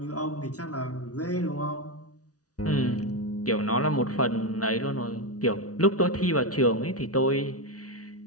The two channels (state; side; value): late; right; 0.68 ms